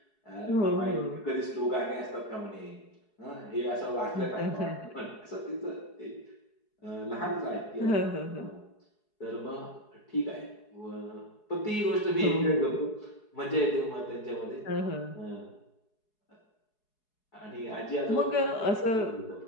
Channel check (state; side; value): late; right; 4.7 ms